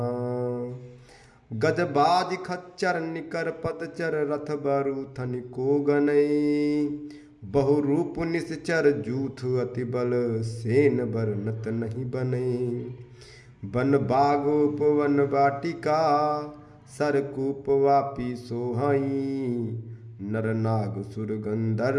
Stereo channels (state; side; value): identical; both; correlation 1.00